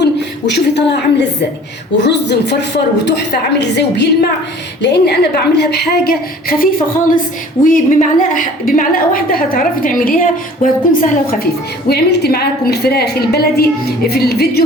وشوفي طالعة عاملة ازاي، والرز مفرفر وتحفة عامل ازاي وبيلمع، لأن أنا بعملها بحاجة خفيفة خالص، وبمعلقة واحدة هتعرفي تعمليها وهتكون سهلة وخفيفة. وعملت معاكم الفراخ البلدي في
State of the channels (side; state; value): both; normal; correlation 0.48